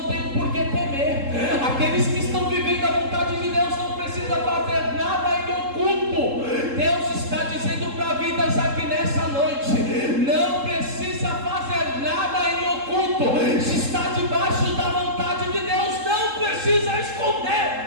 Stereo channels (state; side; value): late; left; 3.7 ms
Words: têm por que temer. Aqueles que estão vivendo a vontade de Deus não precisam fazer nada em oculto. Deus está dizendo para vidas aqui nessa noite: não precisa fazer nada em oculto. Se está debaixo da vontade de Deus, não precisa esconder.